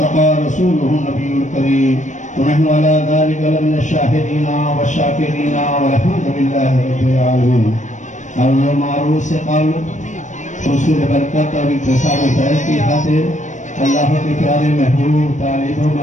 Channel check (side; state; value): right; late; 0.35 ms